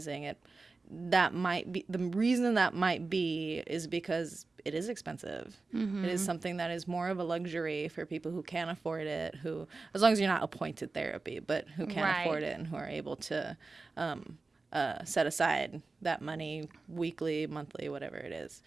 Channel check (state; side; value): quieter; left; 3.8 dB